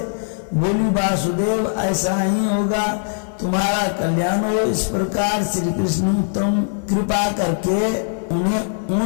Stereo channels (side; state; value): right; silent; 61 dB below the other